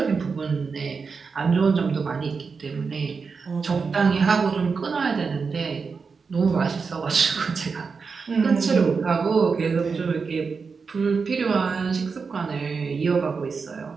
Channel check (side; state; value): left; quieter; 5.1 dB